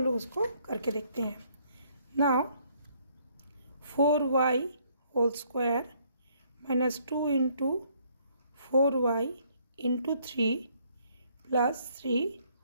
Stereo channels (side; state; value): both; inverted; correlation -0.66